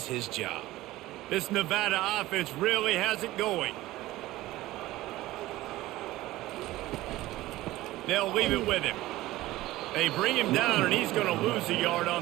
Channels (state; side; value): quieter; left; 17.0 dB